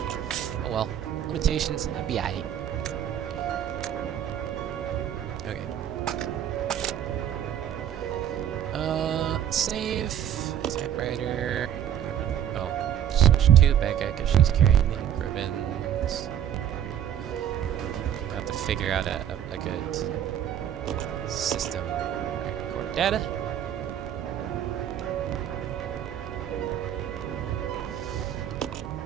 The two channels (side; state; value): left; quieter; 10.1 dB